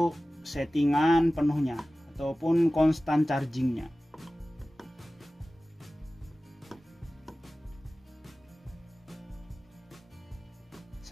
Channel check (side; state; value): both; normal; correlation 0.96